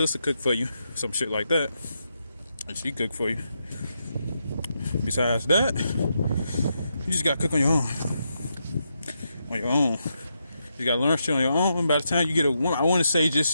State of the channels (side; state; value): both; inverted; correlation -0.83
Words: cook for you, some shit like that. And she cook for you. Besides that, you just gotta cook on your own. On your own. You gotta learn shit on your own. And by the time you get a woman, I want to say